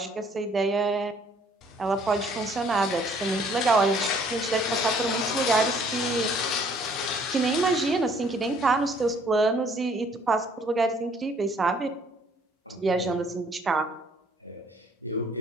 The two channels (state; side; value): normal; both; correlation 0.61